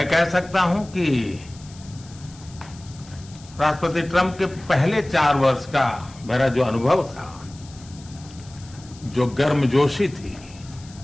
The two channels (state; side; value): noise; left; hiss, 22 dB below the sound